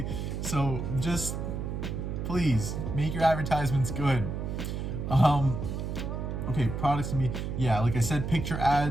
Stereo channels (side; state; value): right; noise; hum, 4 dB below the sound